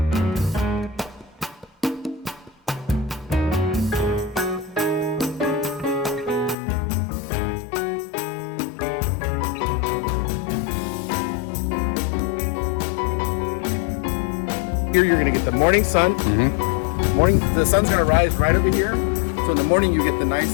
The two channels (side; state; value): right; drops out; at 6.6 s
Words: Here you're going to get the morning sun. The sun's going to rise right over here. So in the morning you get the nice